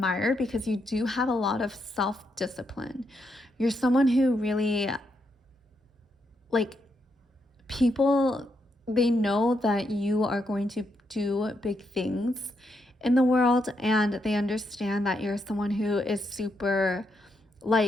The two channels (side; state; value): both; normal; correlation 0.80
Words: because you do have a lot of self-discipline. You're someone who really, like, people, they know that you are going to do big things in the world, and they understand that you're someone who is super,